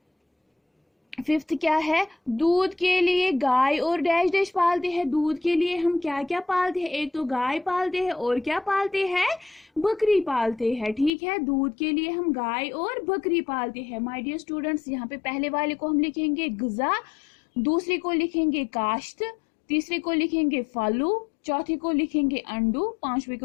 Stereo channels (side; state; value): right; drops out; at 11.1 s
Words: फिफ्थ क्या है? दूध के लिए गाय और डैश डैश पालते हैं। दूध के लिए हम क्या क्या पालते हैं? एक तो गाय पालते हैं और क्या पालते हैं? बकरी पालते हैं। ठीक है, दूध के लिए हम गाय और बकरी पालते हैं। माय डियर स्टूडेंट्स, यहाँ पे पहले वाले को हम लिखेंगे ग़िज़ा, दूसरे को लिखेंगे काश्त, तीसरे को लिखेंगे फलू, चौथे को लिखेंगे अंडू, पांचवे